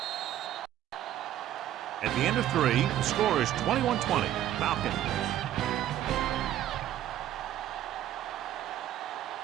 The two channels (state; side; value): quieter; left; 12.3 dB